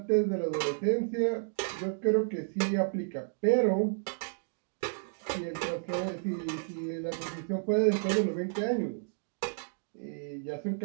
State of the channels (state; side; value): silent; left; digital silence